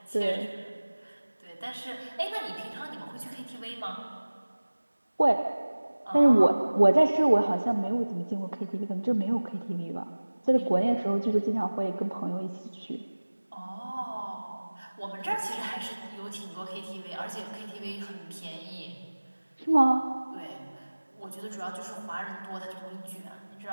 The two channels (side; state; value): both; inverted; correlation -1.00